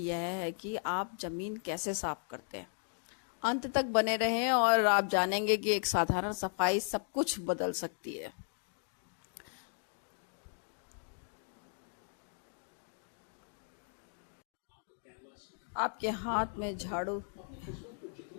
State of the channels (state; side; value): silent; right; 54 dB below the other